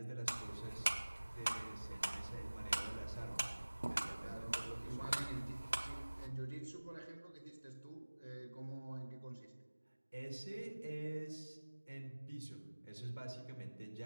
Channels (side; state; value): both; inverted; correlation -1.00